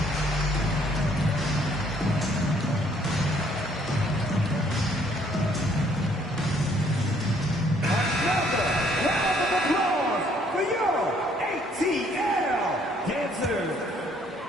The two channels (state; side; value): normal; both; correlation 0.64